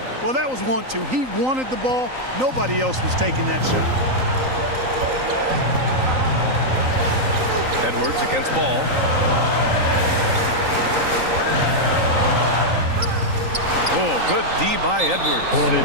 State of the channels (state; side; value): late; left; 3.9 ms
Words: Well, that was 1-2. He wanted the ball. Nobody else was taking that shot. Edwards against Ball. Oh, good D by Edwards.